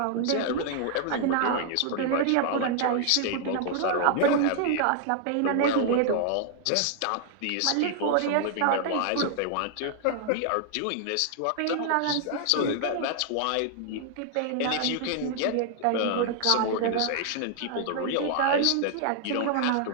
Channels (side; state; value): both; different; correlation 0.00